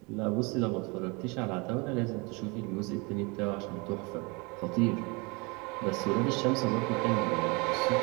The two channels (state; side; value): quieter; left; 28.5 dB